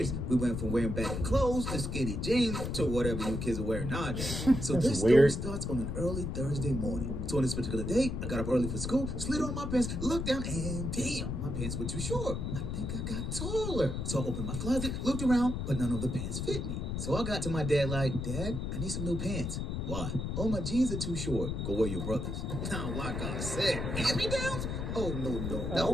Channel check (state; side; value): noise; left; rumble, 3 dB below the sound